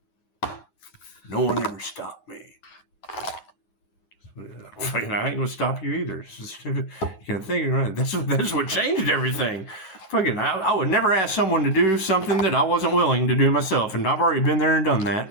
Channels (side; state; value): right; late; 9.4 ms